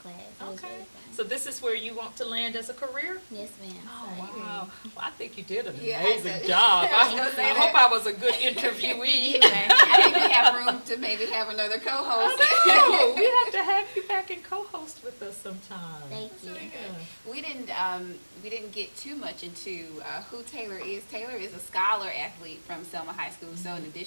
It was really fun. So this is where you want to land as a career? Yes, ma'am. Oh, wow. Well, I think you did an amazing job. I hope I was a good interviewee. I think we have room to maybe have another co-host. I know. We have to have you back and co-host with us sometime. Thank you. Yeah. We didn't get too much into who Taylor is. Taylor is a scholar athlete from Selma High School. So in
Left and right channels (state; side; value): inverted; both; correlation -1.00